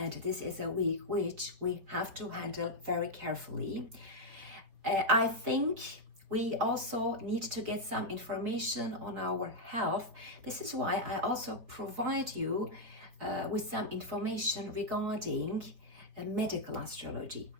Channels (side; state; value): left; late; 4.9 ms